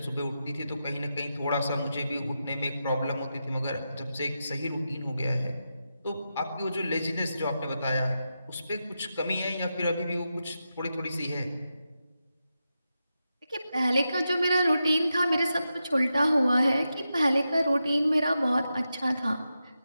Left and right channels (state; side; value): inverted; both; correlation -0.89